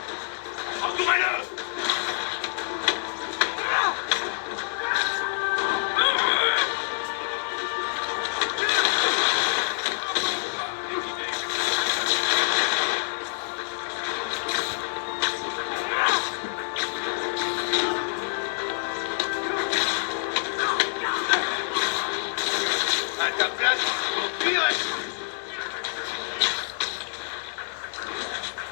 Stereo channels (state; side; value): silent; right; 60 dB below the other